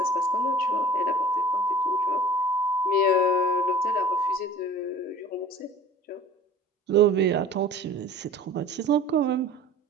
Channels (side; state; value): both; normal; correlation 0.45